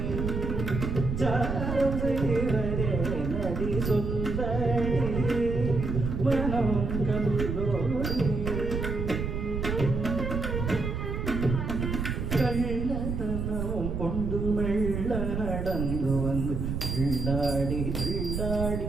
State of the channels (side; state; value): right; noise; rumble, 2 dB below the sound